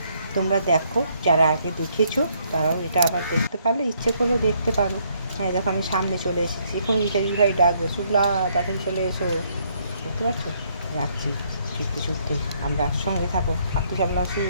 তোমরা দেখো, যারা আগে দেখেছো তারাও এটা আবার দেখতে পারলে, ইচ্ছে করলে দেখতে পারো। হ্যাঁ দেখো, আমি সামনে চলে এসেছি। এখন ইত্যাদি ভাই ডাকবে, শুক্লা তাড়াতাড়ি চলে এসো। দেখতে পাচ্ছ, যাচ্ছি ছুটতে। আমরা সঙ্গে থাকো। মাতৃ সম্মেলন শুরু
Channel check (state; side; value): inverted; both; correlation -0.70